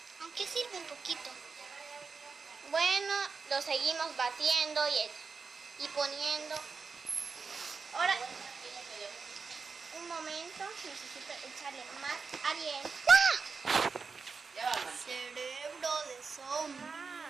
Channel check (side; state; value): left; quieter; 5.0 dB